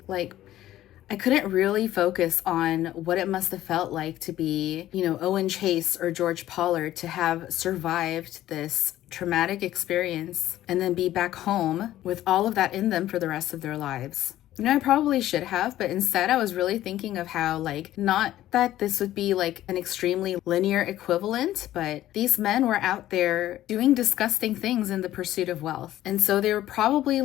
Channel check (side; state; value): right; quieter; 13.8 dB